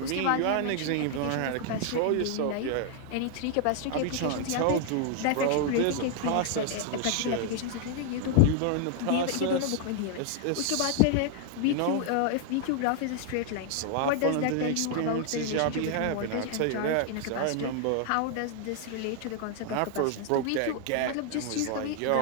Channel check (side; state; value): both; different; correlation 0.00